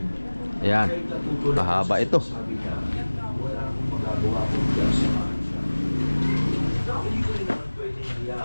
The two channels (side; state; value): both; inverted; correlation -1.00